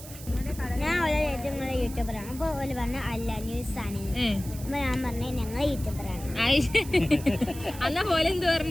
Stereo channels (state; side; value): noise; right; hiss, 15 dB below the sound